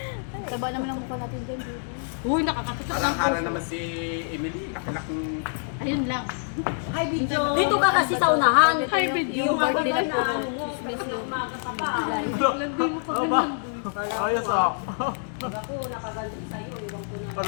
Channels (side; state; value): right; silent; digital silence